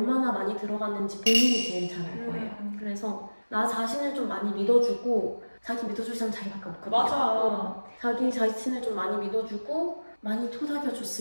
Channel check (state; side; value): inverted; both; correlation -1.00